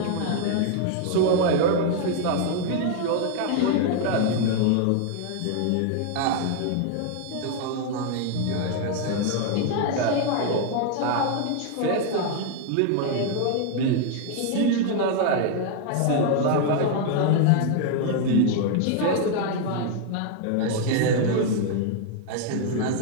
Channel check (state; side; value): different; both; correlation 0.00